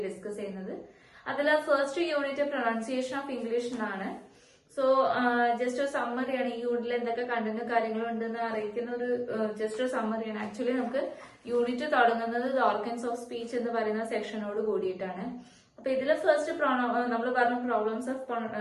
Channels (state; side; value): identical; both; correlation 1.00